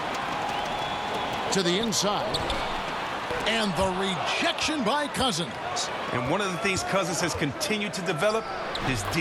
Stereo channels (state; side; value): identical; both; correlation 1.00